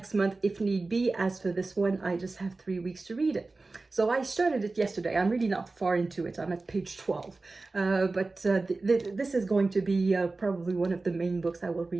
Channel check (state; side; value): quieter; left; 3.5 dB